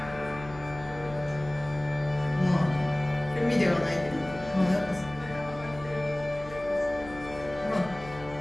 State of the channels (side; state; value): left; noise; hum, 16 dB below the sound